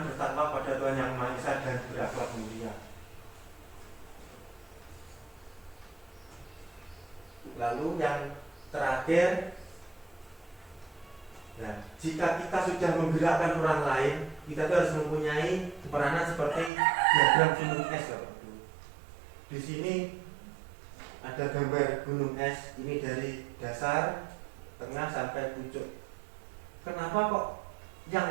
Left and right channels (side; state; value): left; drops out; at 16.7 s